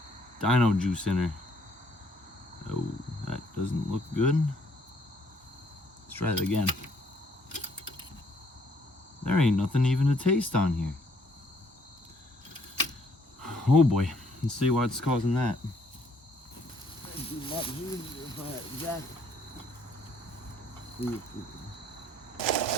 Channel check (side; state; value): both; normal; correlation 0.65